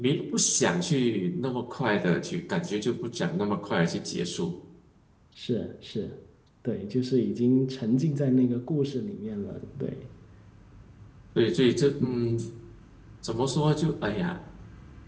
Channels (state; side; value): identical; both; correlation 1.00